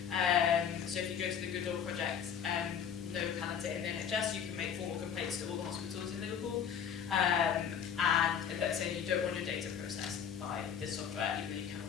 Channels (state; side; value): quieter; right; 7.9 dB